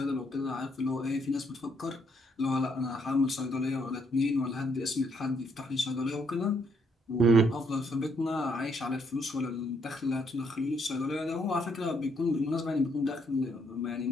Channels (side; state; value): both; normal; correlation 0.72